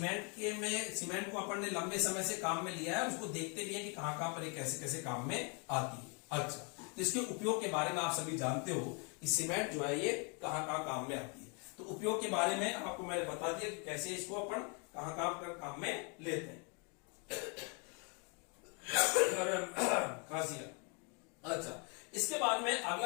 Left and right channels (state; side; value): quieter; right; 35.1 dB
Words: को अपन ने लंबे समय से काम में लिया है, उसको देखते भी है कि कहां पर ये कैसे कैसे काम में आती है। अच्छा, तो इसके उपयोग के बारे में आप सभी जानते हो कि सीमेंट जो है ये कहां काम में आती है। तो उपयोग के बारे में आपको मैंने बता दिया कि कैसे इसको अपन कहां काम में लेते हैं। अच्छा, इसके बाद में